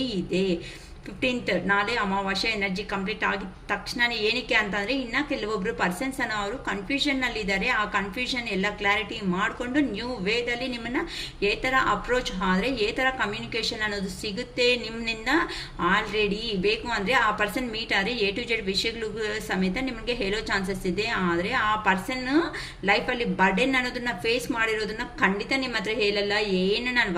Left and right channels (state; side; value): identical; both; correlation 1.00